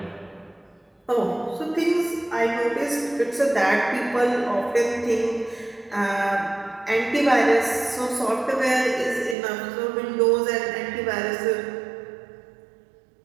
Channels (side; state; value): left; drops out; at 9.3 s